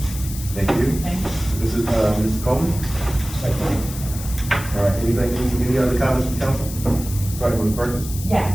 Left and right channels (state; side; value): noise; left; hiss, 12 dB below the sound